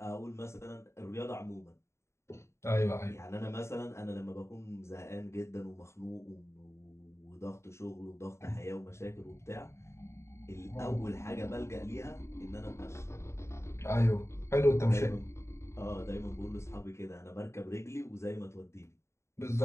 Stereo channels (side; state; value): right; late; 0.13 ms